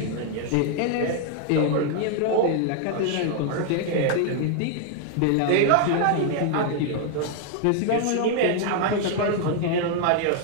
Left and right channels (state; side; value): different; both; correlation 0.00